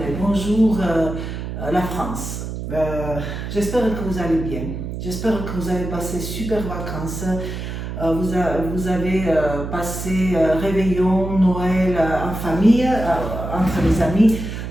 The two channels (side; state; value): right; noise; hum, 6 dB below the sound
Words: bonjour la France. J'espère que vous allez bien, j'espère que vous avez passé super vacances. Vous avez passé réveillon, Noël en famille, entre les amis,